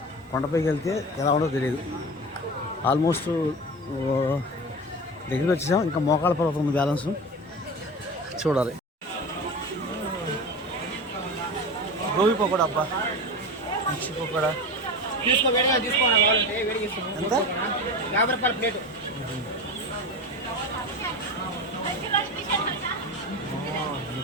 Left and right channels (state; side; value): normal; both; correlation 0.28